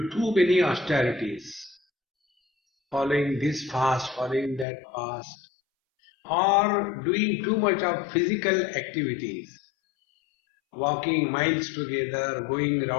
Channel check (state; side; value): drops out; right; at 4.7 s